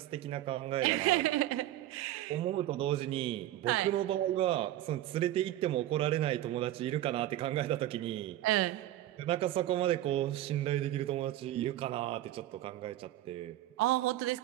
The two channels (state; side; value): quieter; left; 14.0 dB